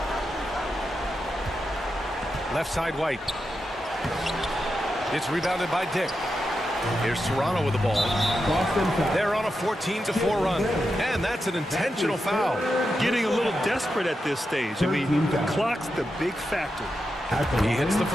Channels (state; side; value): normal; both; correlation 0.88